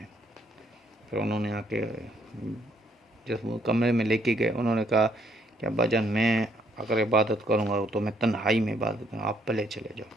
پھر انہوں نے آ کے جس کمرے میں لے کے گئے، انہوں نے کہا کہ ابا جان میں اگر عبادت کروں گا تو میں تنہائی میں عبادت کروں گا، آپ پہلے چلے جاؤ۔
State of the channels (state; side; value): normal; both; correlation 0.69